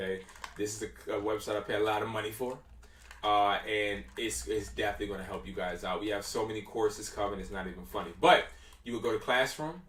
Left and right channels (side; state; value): both; identical; correlation 1.00